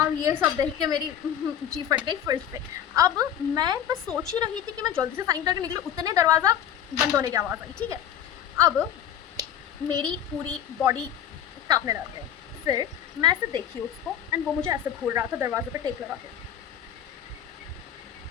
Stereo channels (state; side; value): quieter; right; 9.8 dB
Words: ये सब देख के मेरी जी फट गई फिर से। अब मैं बस सोच ही रही थी कि मैं जल्दी से साइन करके निकलूँ, उतने दरवाज़ा बंद होने की आवाज़ आई, ठीक है। अब मेरी पूरी बॉडी कांपने लग गई। फिर मैं ऐसे देखी उसको एंड वो मुझे ऐसे घूर रहा था दरवाजे पे टेक लगा के,